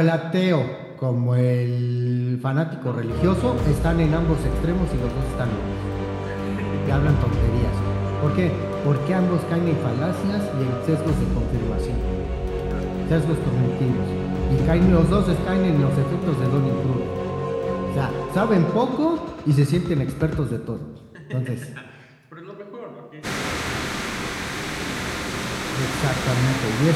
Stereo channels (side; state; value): both; identical; correlation 1.00